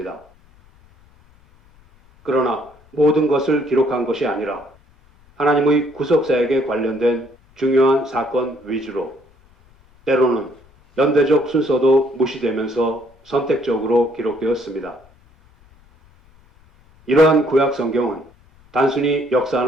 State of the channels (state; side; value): noise; left; rumble, 30 dB below the sound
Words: 그러나 모든 것을 기록한 것이 아니라 하나님의 구속사역에 관련된 중요한 사건 위주로 때로는 연대적 순서도 무시되면서 선택적으로 기록되었습니다. 이러한 구약 성경은 단순히